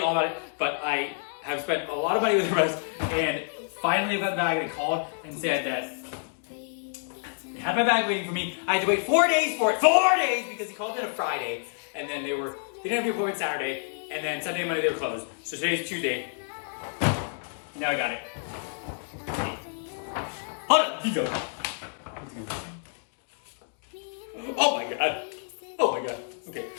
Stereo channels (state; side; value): silent; right; digital silence